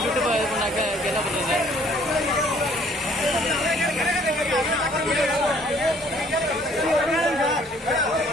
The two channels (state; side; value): normal; both; correlation 0.59